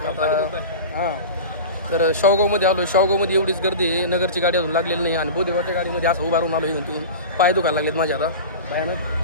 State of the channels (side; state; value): both; inverted; correlation -0.32